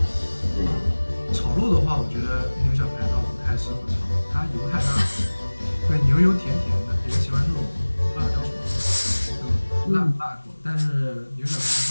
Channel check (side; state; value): both; inverted; correlation -1.00